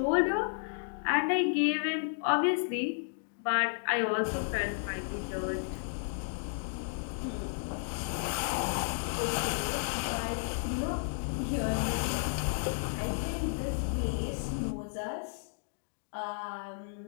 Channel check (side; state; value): right; silent; digital silence